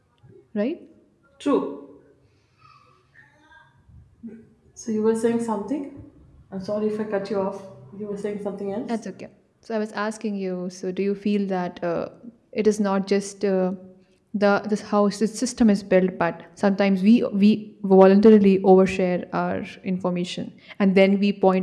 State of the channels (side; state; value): both; identical; correlation 1.00